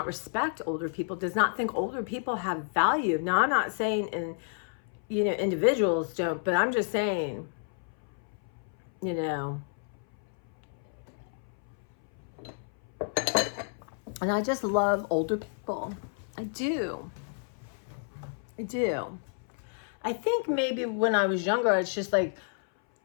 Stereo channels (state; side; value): silent; right; 58 dB below the other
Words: respect older people, does not think older people have value. Now, I'm not saying you know, individuals don't, but I'm just saying, you know, And I just love older people. I do. I do. I think maybe when I was younger, it's just like,